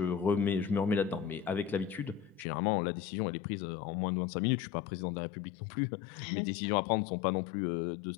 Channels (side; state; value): right; drops out; at 2.5 s